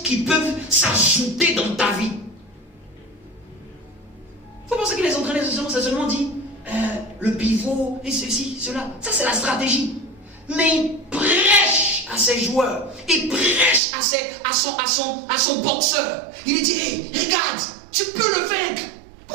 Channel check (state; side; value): drops out; left; at 13.8 s